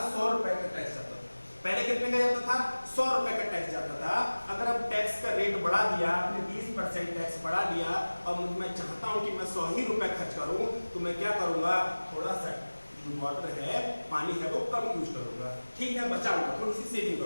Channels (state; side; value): inverted; both; correlation -1.00